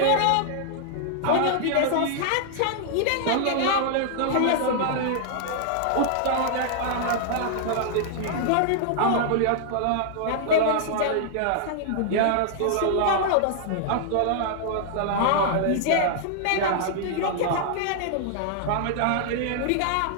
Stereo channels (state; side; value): different; both; correlation -0.01